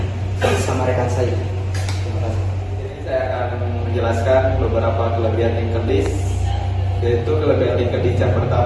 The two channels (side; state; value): both; identical; correlation 1.00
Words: sama rekan saya. Terima kasih. Jadi saya akan menjelaskan beberapa kelebihan linked list. Yaitu kelebihan linked list yang